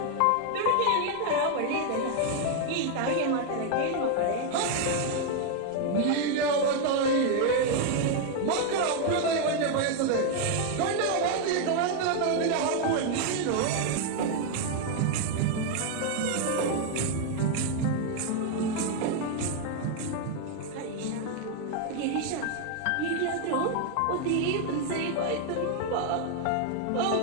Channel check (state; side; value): different; both; correlation 0.00